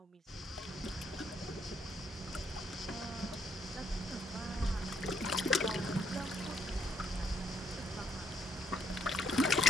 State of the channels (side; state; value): both; normal; correlation 0.70